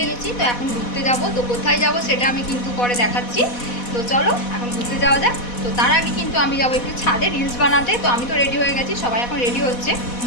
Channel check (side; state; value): right; late; 4.1 ms